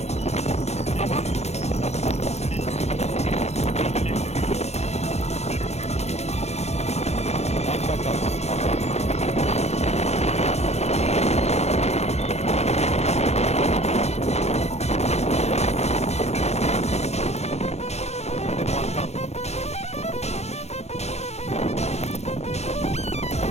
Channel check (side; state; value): right; late; 0.31 ms